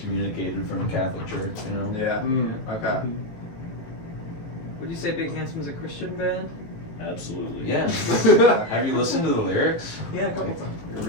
from the Catholic Church. You know? Yeah. Okay. Would you say Big Handsome's a Christian band? Absolutely. Yeah. Have you listened to the lyrics? Yeah, a couple times. You're a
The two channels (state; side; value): late; right; 18 ms